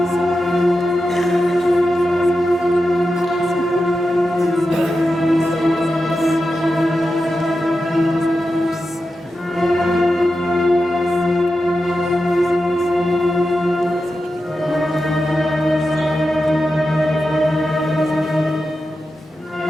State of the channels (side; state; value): both; normal; correlation 0.90